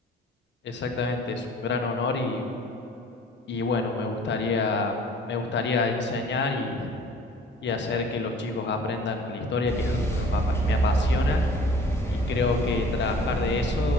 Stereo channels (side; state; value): both; normal; correlation 0.49